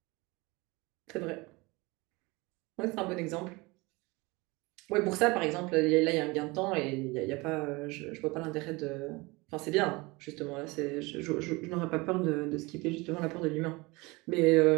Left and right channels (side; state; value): left; quieter; 24.3 dB